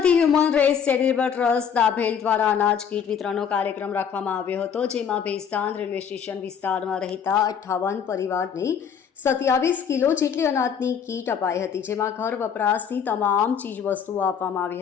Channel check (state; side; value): quieter; right; 7.4 dB